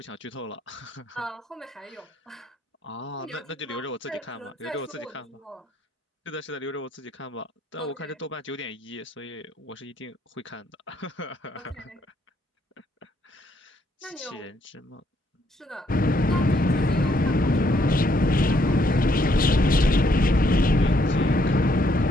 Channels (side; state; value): both; normal; correlation 0.71